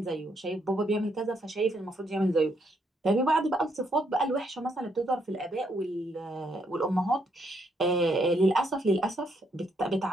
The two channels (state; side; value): normal; both; correlation 0.74